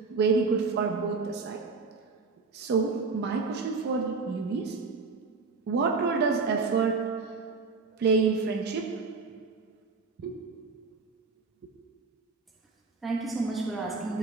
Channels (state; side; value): quieter; left; 4.4 dB